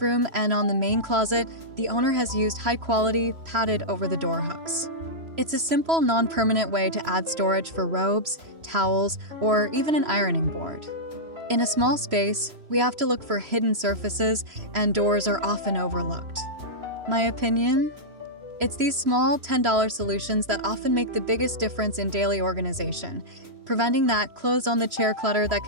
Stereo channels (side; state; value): left; late; 3.0 ms